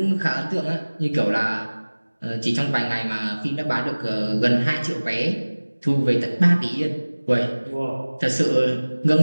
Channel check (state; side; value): inverted; both; correlation -1.00